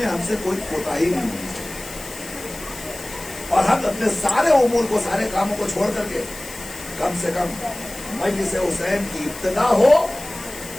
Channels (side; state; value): left; noise; hiss, 14 dB below the sound